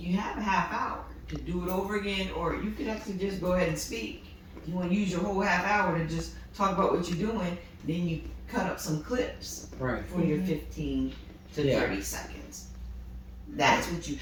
have a half hour to do it over again, or you could actually just go ahead and speak. You want to use your whole half hour to just talk about what you're doing, then you cut up some clips Right. for your 15 to 30 seconds. That's what you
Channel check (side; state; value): both; identical; correlation 1.00